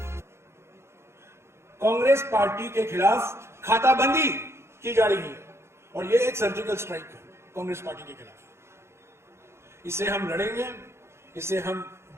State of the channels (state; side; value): late; left; 0.13 ms